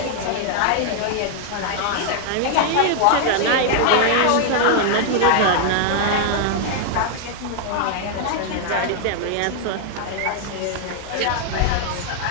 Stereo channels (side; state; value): both; different; correlation 0.00